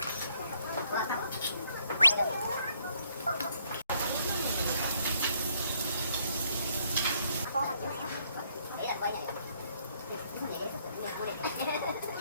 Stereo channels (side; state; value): both; inverted; correlation -0.69